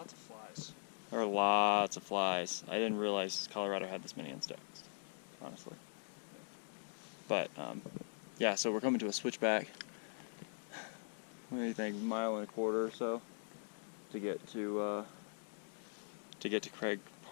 of flies. There are lots of flies. I didn't realize Colorado had this many insects, honestly. But yeah, so we're coming to a switchback. What do you think? 1.25 miles or so to get to Craig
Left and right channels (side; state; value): right; silent; digital silence